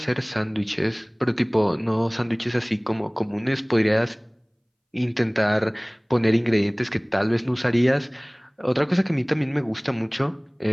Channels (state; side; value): identical; both; correlation 1.00